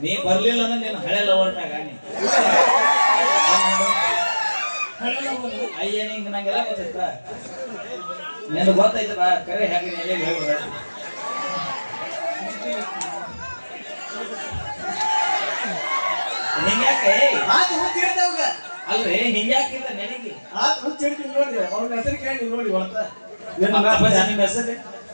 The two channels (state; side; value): inverted; both; correlation -1.00